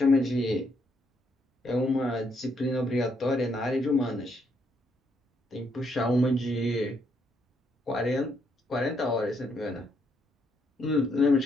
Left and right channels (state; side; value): normal; both; correlation 0.74